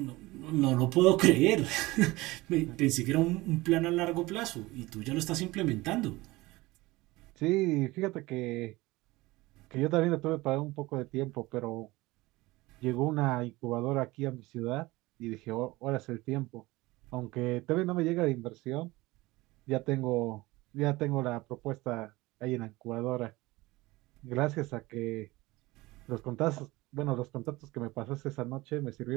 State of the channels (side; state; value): left; quieter; 20.6 dB